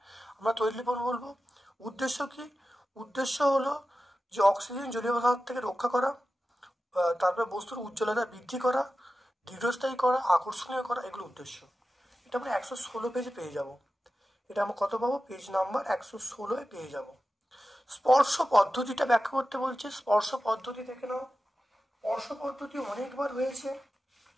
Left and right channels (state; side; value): normal; both; correlation 0.93